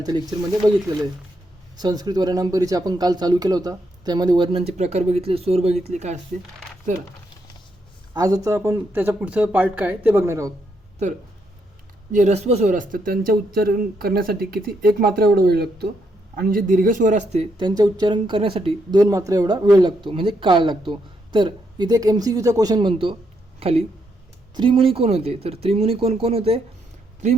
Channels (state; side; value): normal; both; correlation 0.78